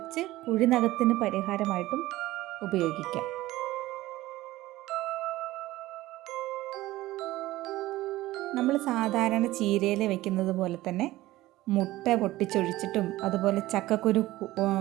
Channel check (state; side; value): quieter; left; 17.0 dB